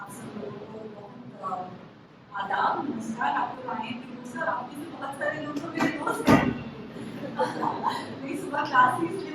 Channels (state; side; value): identical; both; correlation 1.00